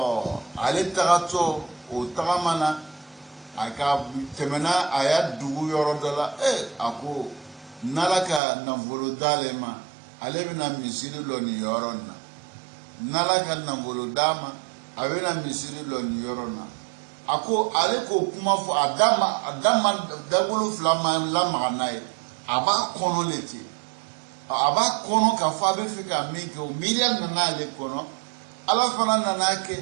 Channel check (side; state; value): left; drops out; at 8.4 s